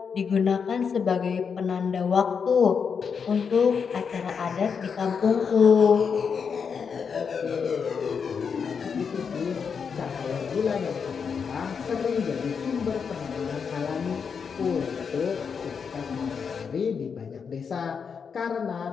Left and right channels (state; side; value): quieter; right; 6.2 dB